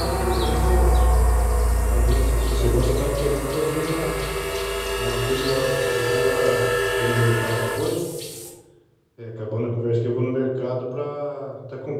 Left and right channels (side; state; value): both; identical; correlation 1.00